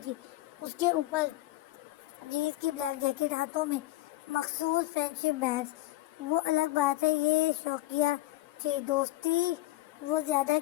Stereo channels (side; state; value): right; quieter; 17.4 dB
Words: تھی، اس کے اوپر جینس کی بلیک جیکٹ، ہاتھوں میں مخصوص فرینڈشپ بینڈز۔ وہ الگ بات ہے، یہ شوقیہ تھی، دوستی وہ زیادہ